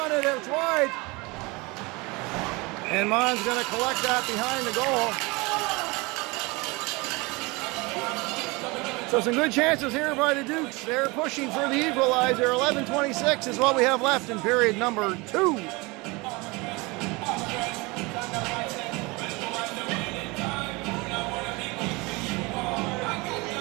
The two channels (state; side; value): quieter; left; 25.3 dB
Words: it, it's wide. And Mon's going to collect that behind the goal. So some good chances here by the Dukes. They're pushing for the equalizer. 11:26 is what we have left in period number 2.